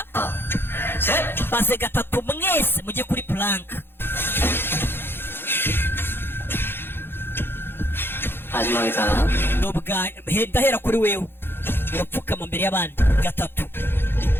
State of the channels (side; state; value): right; late; 0.10 ms